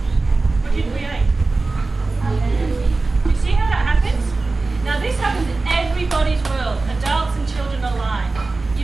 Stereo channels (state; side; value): quieter; left; 3.5 dB